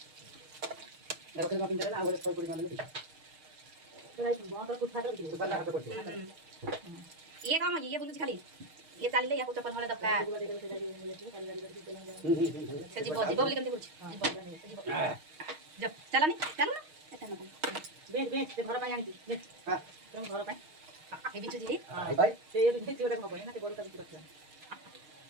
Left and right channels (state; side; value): late; left; 6.5 ms